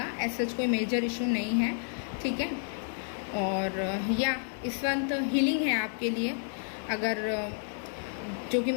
ऐसा कोई मेजर इशू नहीं है। ठीक है, और या इस मंथ हीलिंग है आपके लिए। अगर जो कि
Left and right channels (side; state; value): right; silent; 56 dB below the other